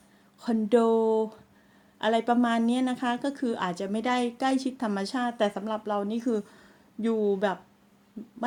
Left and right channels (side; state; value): both; identical; correlation 1.00